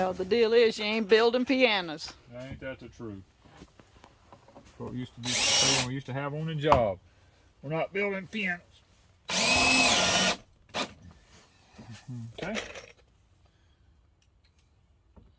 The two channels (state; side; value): identical; both; correlation 1.00